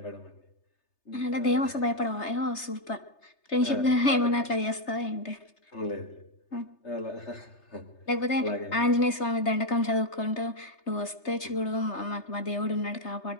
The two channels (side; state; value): right; late; 3.3 ms